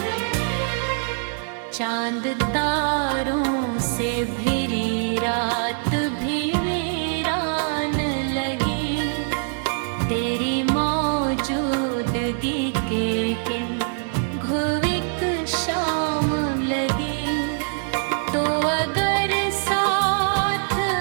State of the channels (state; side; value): silent; left; digital silence